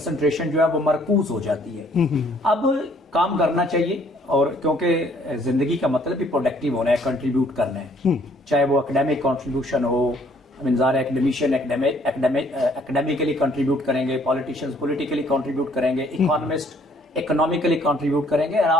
जो है वो मरकूज हो जाती है। अब काम करना चाहिए और क्योंकि जिंदगी का मतलब भी प्रोडक्टिव होना है, कंट्रीब्यूट करना है। चाहे वो एकेडमिक कंट्रीब्यूशन हो, एकेडमिशियन एकेडमिकली कंट्रीब्यूट करेंगे, पॉलिटिशियंस पॉलिटिकली कंट्रीब्यूट करेंगे, इकोनॉमिस्ट इकोनॉमिकली कंट्रीब्यूट करेंगे और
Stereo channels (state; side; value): normal; both; correlation 0.62